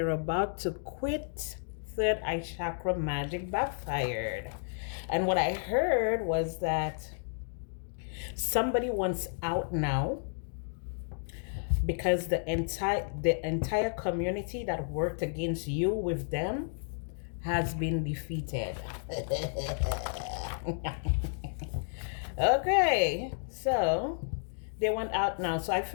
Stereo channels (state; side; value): silent; right; digital silence